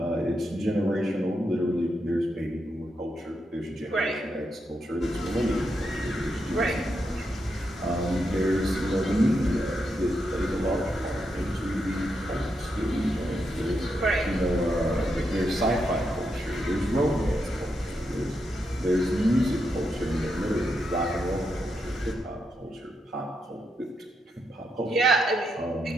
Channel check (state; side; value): normal; both; correlation 0.83